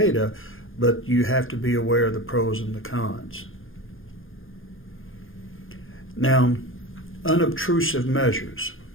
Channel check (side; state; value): right; late; 0.59 ms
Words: but you have to be aware of the pros and the cons. Now, unobtrusive measures.